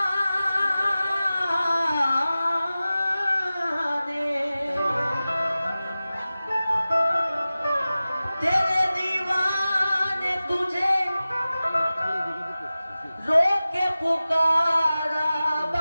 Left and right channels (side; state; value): both; inverted; correlation -0.96